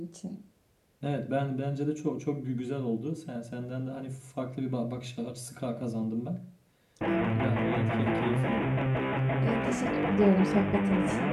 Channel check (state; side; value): identical; both; correlation 1.00